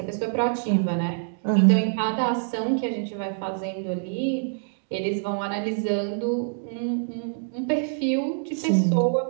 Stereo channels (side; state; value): left; silent; digital silence